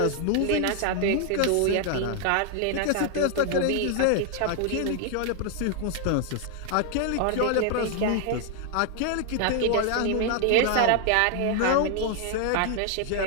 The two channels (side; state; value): both; different; correlation 0.00